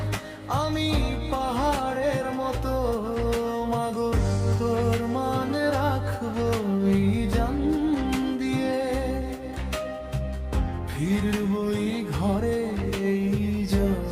আমি পাহাড়ের মতো। মাগো তোর মান রাখবো এই জান দিয়ে, ফিরবই ঘরে এই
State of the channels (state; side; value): identical; both; correlation 1.00